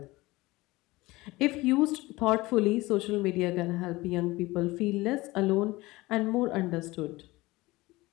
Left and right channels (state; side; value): quieter; right; 20.5 dB